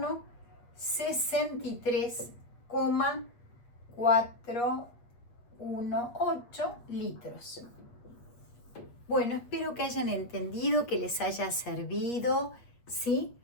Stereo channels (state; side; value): late; right; 8.4 ms